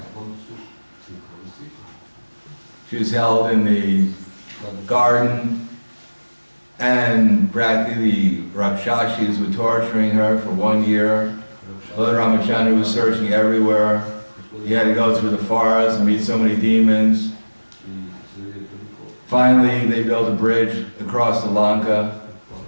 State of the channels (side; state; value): both; inverted; correlation -1.00